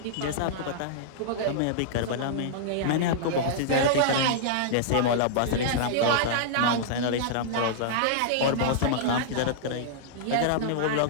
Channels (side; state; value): both; different; correlation -0.02